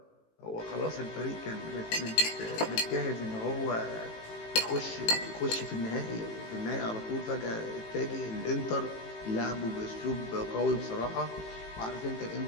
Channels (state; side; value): late; right; 18 ms